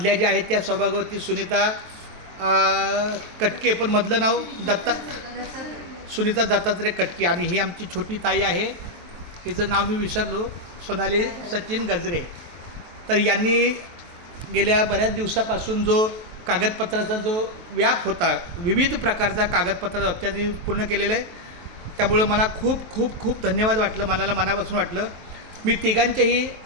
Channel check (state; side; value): late; left; 23 ms